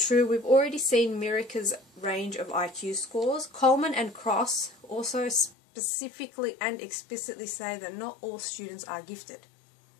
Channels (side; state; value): right; drops out; at 5.6 s